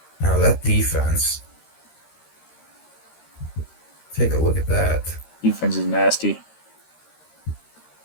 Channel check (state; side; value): late; right; 13 ms